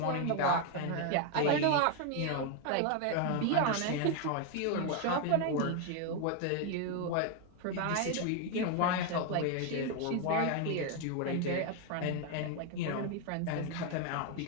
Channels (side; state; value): both; different; correlation 0.01